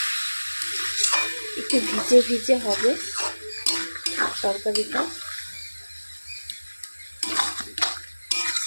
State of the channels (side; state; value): both; inverted; correlation -1.00